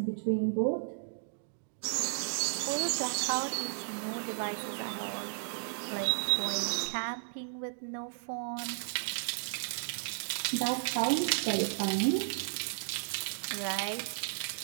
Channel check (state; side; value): silent; left; digital silence